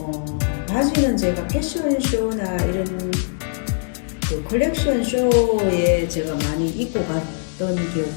바지는 제가 패션쇼나 이런 그 컬렉션 쇼에 제가 많이 입고 갔던 기억이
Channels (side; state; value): right; silent; digital silence